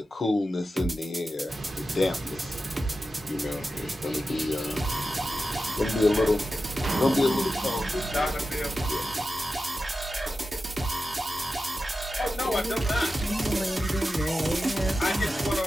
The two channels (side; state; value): both; normal; correlation 0.92